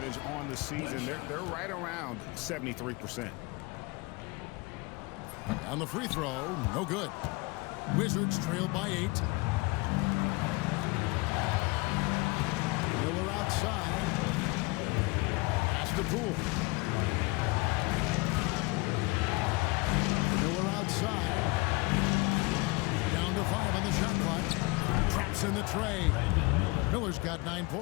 on the season, they're right around 73%. On the free throw, no good. Wizards trail by 8. Miller outside. Pass to Poole. Miller outside. Down to 5 on the shot clock. Traps in the tray. Miller's got 9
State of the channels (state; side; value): quieter; right; 25.5 dB